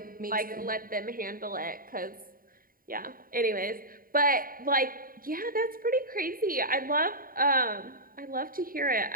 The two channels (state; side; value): late; left; 0.41 ms